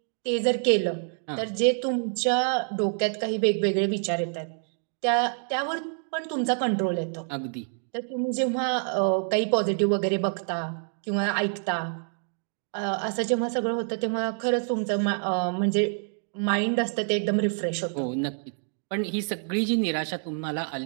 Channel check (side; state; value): left; silent; 60 dB below the other